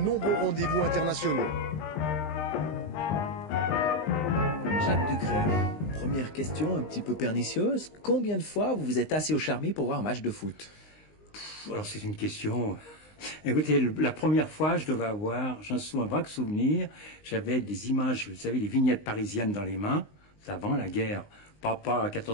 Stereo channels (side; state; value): right; late; 19 ms